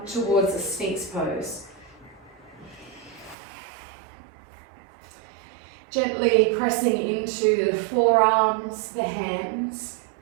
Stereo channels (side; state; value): left; drops out; at 3.4 s